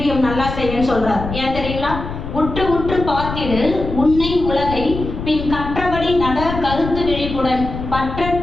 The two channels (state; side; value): noise; left; rumble, 7 dB below the sound